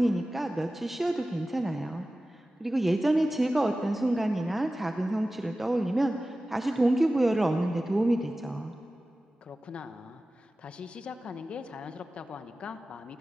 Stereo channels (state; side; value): normal; both; correlation 0.95